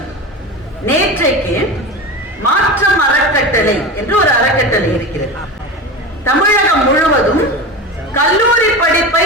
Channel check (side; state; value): both; normal; correlation 0.27